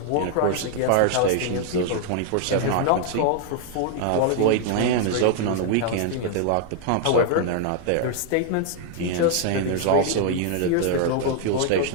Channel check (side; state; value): both; different; correlation 0.00